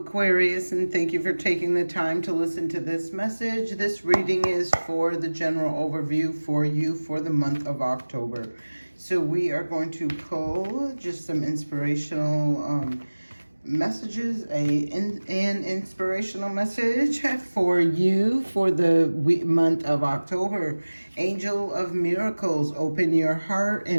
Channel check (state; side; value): inverted; both; correlation -1.00